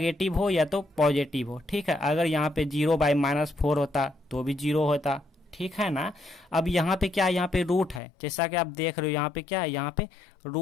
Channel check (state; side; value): drops out; right; at 8.0 s